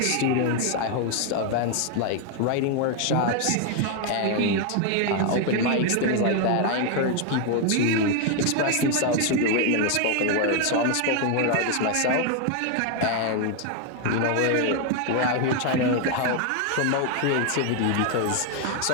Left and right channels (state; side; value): different; both; correlation 0.01